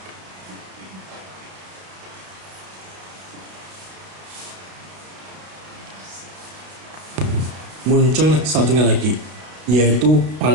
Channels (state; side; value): late; left; 32 ms